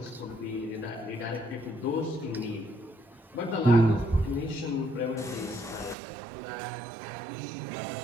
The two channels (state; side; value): drops out; left; at 6.0 s